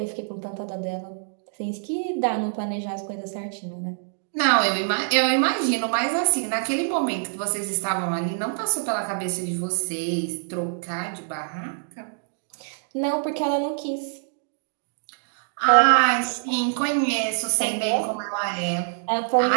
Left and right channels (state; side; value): silent; left; digital silence